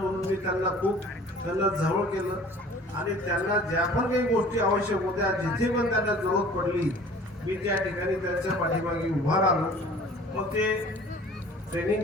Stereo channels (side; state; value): both; normal; correlation 0.48